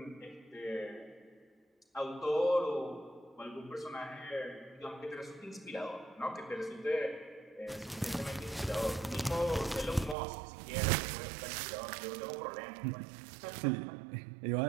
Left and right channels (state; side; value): drops out; left; at 10.2 s